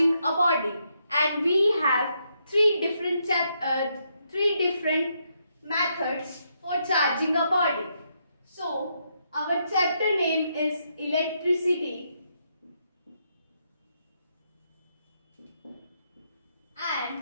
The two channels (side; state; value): both; inverted; correlation -0.78